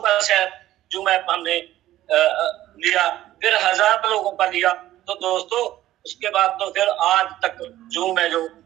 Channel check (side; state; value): left; quieter; 14.2 dB